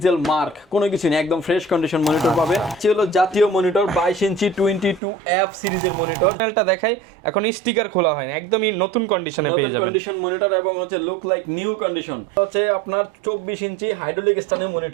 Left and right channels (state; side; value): drops out; left; at 5.0 s